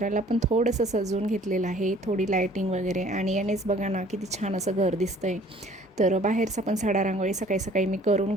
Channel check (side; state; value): both; normal; correlation 0.54